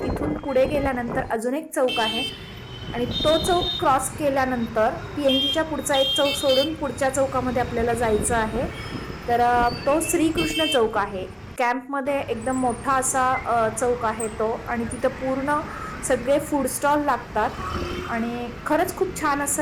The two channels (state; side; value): identical; both; correlation 1.00